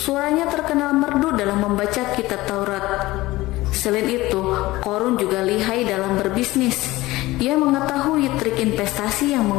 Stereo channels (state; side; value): quieter; right; 18.7 dB